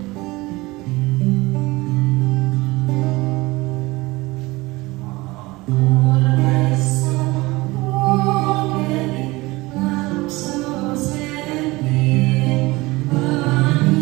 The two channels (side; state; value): left; quieter; 21.6 dB